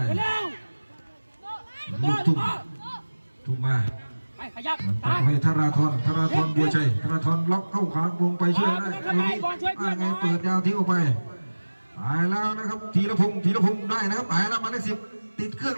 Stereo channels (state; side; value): inverted; both; correlation -1.00